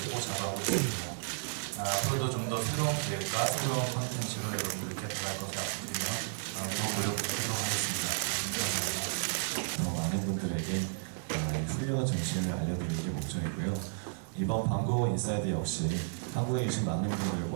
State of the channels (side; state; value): left; silent; digital silence